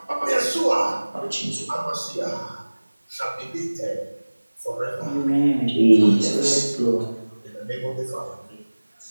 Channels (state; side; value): inverted; both; correlation -1.00